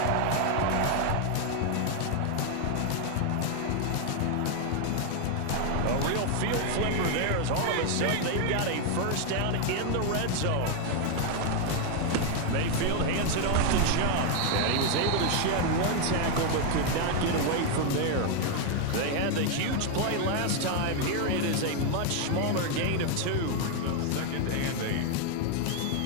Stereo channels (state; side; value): different; both; correlation 0.01